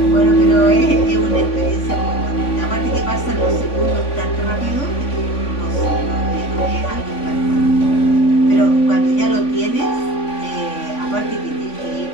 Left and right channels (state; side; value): late; right; 3.5 ms